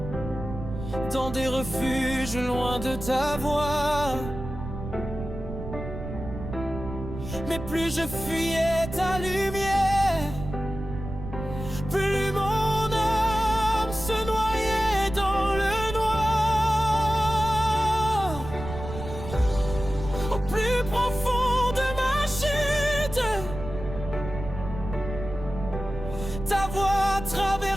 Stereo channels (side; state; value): right; noise; rumble, 9 dB below the sound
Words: dans des refuges loin de ta voix. Mais plus je fuyais ta lumière, plus mon âme se noyait dans le noir. Au plus profond de ma chute, ta voix